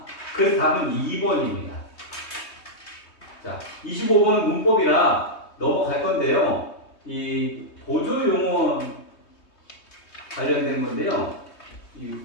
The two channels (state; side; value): late; right; 3.2 ms